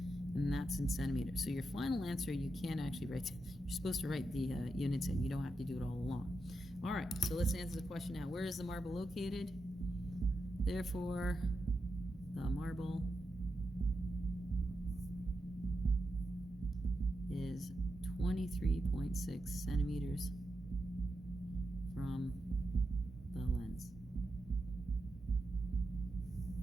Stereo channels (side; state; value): both; normal; correlation 0.87